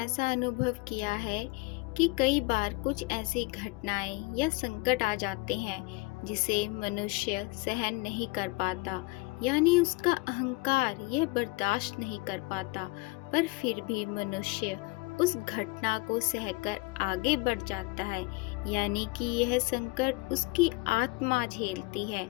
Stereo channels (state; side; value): quieter; right; 24.3 dB